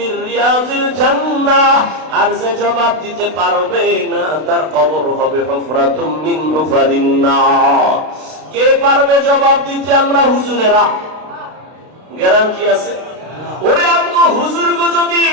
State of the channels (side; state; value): left; late; 32 ms